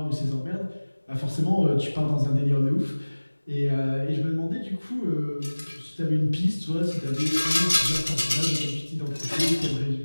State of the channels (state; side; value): inverted; both; correlation -1.00